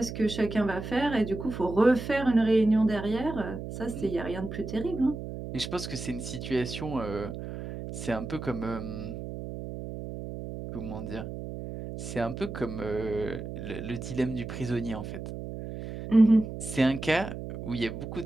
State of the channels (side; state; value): right; noise; hum, 8 dB below the sound